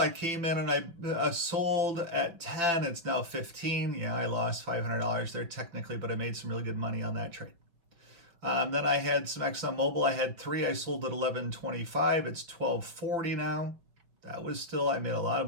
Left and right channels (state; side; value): late; left; 5.7 ms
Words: came in and I sold at 10. It's now 15. Yeah, I lost $500 there technically, but I made some really good money on that trade. Then I had some ExxonMobil. I had 3. I sold at 11.25. It's 12.40 now. That was still, I made a lot of